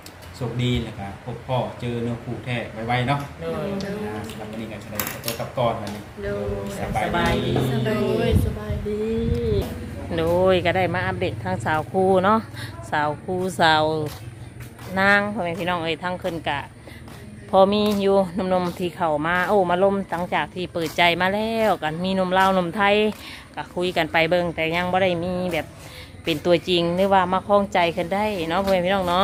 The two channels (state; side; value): identical; both; correlation 1.00